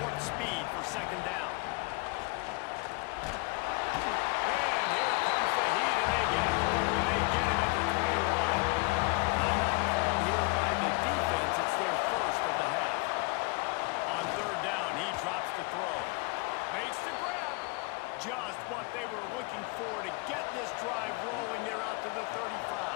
warp speed for 2nd down. And here comes the heat, and they get home, and they get him at the 21. Timeout called here by the defense. It's their 1st of the half. On 3rd down, he drops the throw. Makes the grab. Just what they were looking for to get this drive rolling. They're out to the 35.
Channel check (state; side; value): quieter; right; 28.4 dB